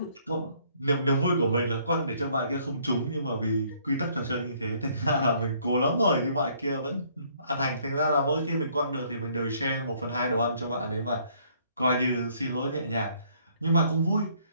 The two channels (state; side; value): inverted; both; correlation -0.64